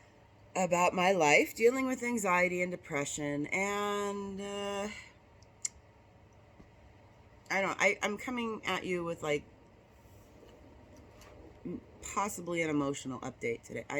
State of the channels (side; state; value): both; identical; correlation 1.00